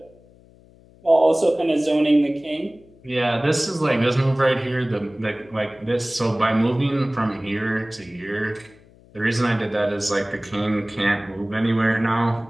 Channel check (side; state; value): left; noise; hum, 27 dB below the sound